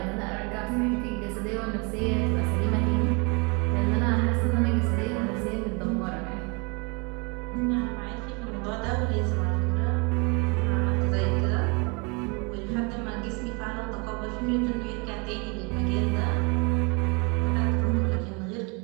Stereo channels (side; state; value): left; quieter; 31.4 dB